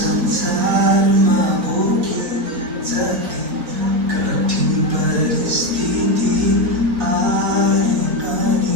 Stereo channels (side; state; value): left; late; 4.0 ms